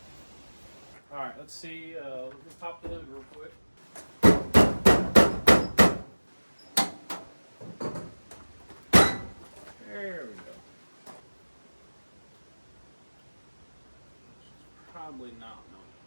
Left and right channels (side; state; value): both; inverted; correlation -1.00